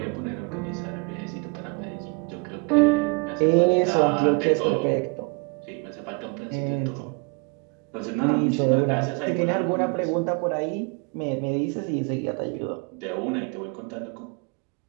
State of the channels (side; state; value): left; quieter; 32.2 dB